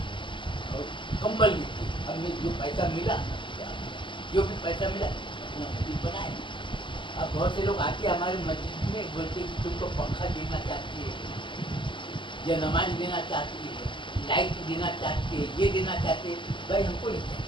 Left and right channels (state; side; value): late; right; 0.24 ms